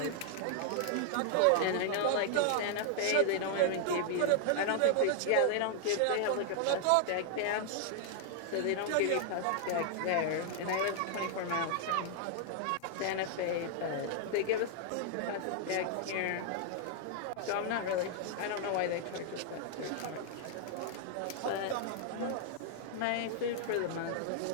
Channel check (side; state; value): both; different; correlation 0.00